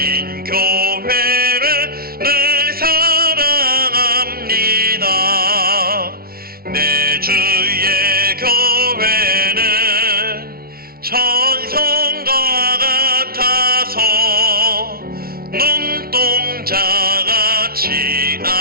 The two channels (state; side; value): late; left; 0.44 ms